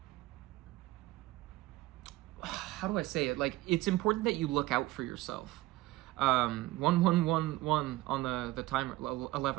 do I say it? Like, it's important that you look out for yourself. 1111 on the timer,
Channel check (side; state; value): left; quieter; 18.0 dB